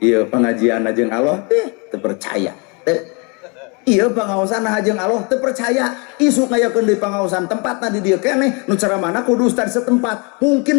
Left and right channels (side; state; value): right; quieter; 32.1 dB